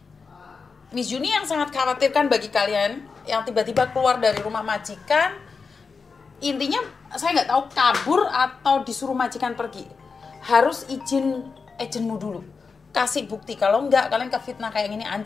Miss Juni yang sangat khawatirkan bagi kalian yang tiba-tiba keluar dari rumah majikan, intinya saya nggak tahu kabur atau disuruh majikan pergi, harus izin agenmu dulu, kasih bukti. Kalau nggak, kalian kefitnah kayak gini,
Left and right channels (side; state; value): right; quieter; 4.9 dB